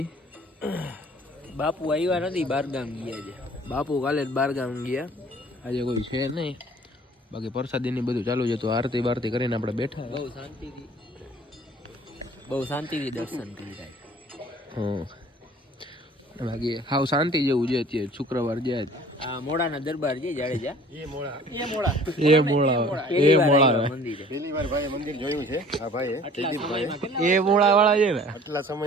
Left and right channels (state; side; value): normal; both; correlation 0.50